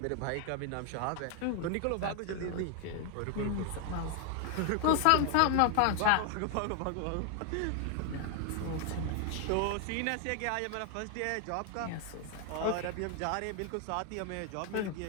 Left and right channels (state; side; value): different; both; correlation 0.00